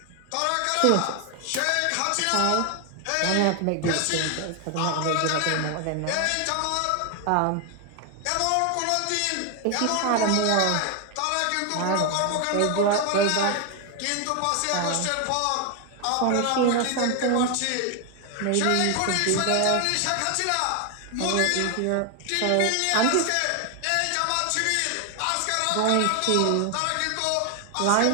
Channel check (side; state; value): both; different; correlation 0.01